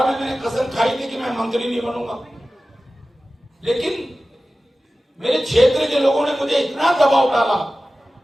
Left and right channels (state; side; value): normal; both; correlation 0.95